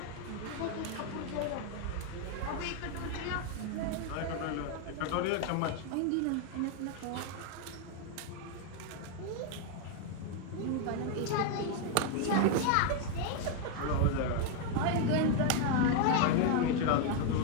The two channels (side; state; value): both; different; correlation 0.01